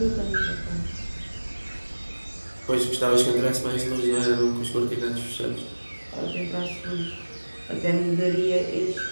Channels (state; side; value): inverted; both; correlation -1.00